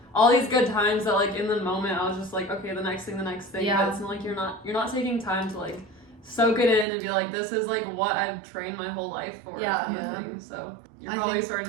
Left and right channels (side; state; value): left; drops out; at 6.9 s